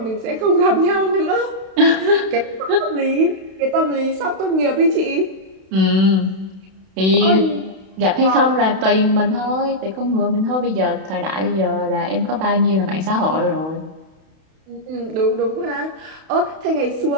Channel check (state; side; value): late; left; 32 ms